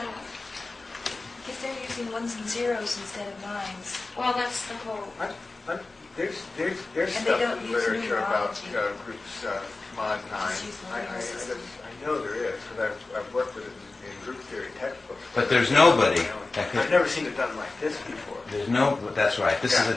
Because they're using ones and zeros instead of nines. Well, that's the whole. There's And they stuff don't in use literature about numerology. groups mod 9. Just use the I numeral system. know there is, because I've worked with it in group theory textbooks. But there's nobody that I've could... never seen it done like this before. There's no... That's right. This is a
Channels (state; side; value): quieter; right; 3.4 dB